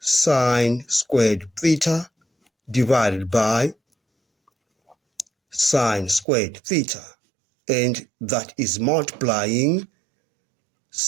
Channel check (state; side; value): drops out; left; at 6.2 s